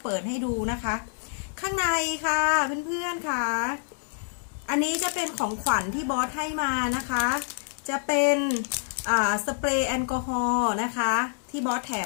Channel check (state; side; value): silent; right; digital silence